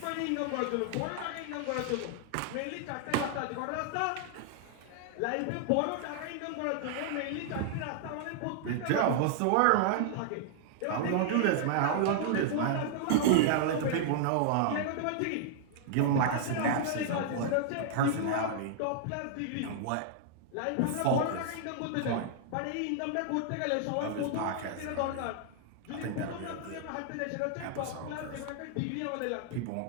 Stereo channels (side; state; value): both; different; correlation -0.01